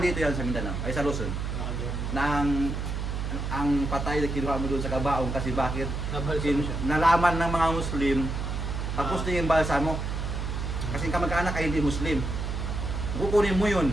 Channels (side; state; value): right; noise; hum, 3 dB below the sound